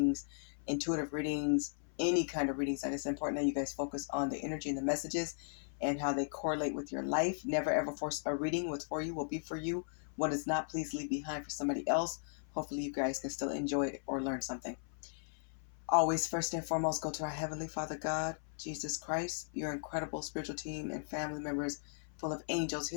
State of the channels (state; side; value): silent; right; 53 dB below the other